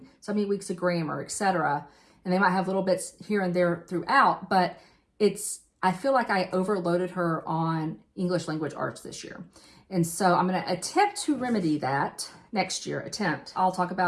so many weeks of grammar, etc. And they might have little bits here and there throughout, but I feel like I overloaded her on English language arts this year. And so I'm going to attempt to remedy that next year. I'll talk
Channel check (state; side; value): identical; both; correlation 1.00